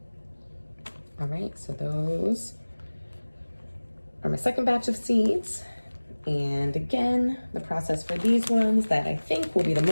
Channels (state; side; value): inverted; both; correlation -1.00